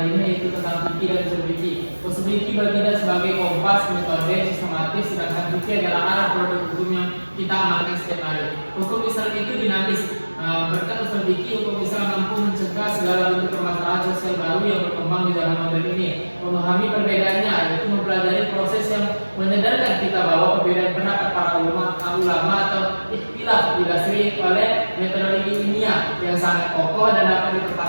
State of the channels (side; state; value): both; inverted; correlation -1.00